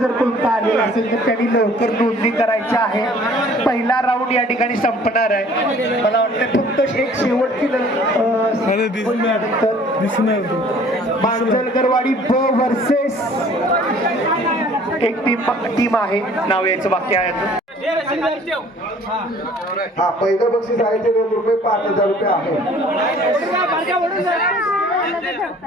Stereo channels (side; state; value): both; normal; correlation 0.53